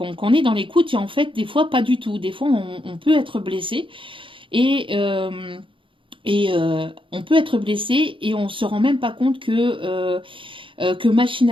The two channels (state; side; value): late; left; 0.25 ms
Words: est dans l'écoute et en fait des fois pas du tout. Des fois on peut être blessé et on peut être blessé et on se rend même pas compte que